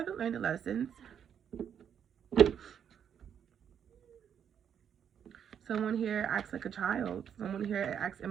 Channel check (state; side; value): quieter; left; 8.4 dB